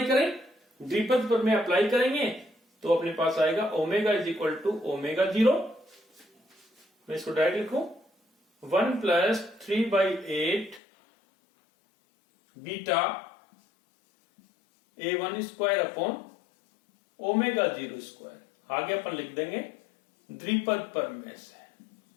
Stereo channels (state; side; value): drops out; right; at 10.8 s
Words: करें। द्विपद प्रमेय अप्लाई करेंगे तो अपने पास आएगा omega is equal to omega 0, मैं इसको डायरेक्ट लिखूं 1 plus 3/8 beta A1 square upon omega 0 square. आगे अपन लिख देंगे द्विपद प्रमेय से,